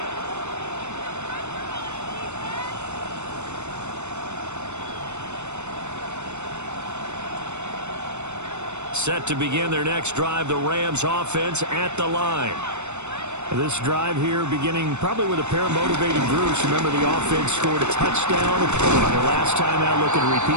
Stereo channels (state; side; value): late; left; 0.82 ms